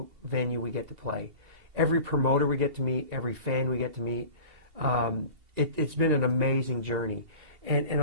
venue we get to play. Every promoter we get to meet, every fan we get to meet. It's been an amazing journey. And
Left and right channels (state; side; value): late; left; 2.8 ms